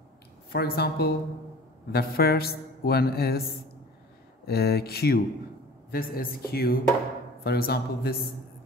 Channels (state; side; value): normal; both; correlation 0.43